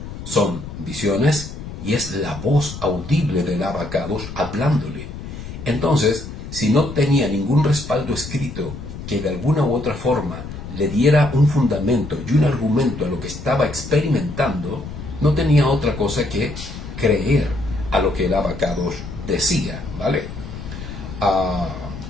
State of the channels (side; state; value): left; noise; rumble, 10 dB below the sound